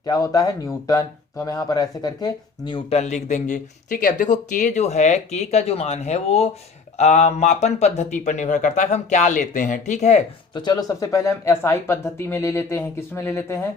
क्या होता है, न्यूटन। तो हम यहाँ पर ऐसे करके न्यूटन लिख देंगे, ठीक है। अब देखो के जो है, के का जो मान है वो मापन पद्धति पर निर्भर करता है, हम क्या लेते हैं, ठीक है। तो चलो सबसे पहले हम एसआई पद्धति में ले लेते हैं, किस में ले लेते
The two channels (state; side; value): quieter; right; 4.7 dB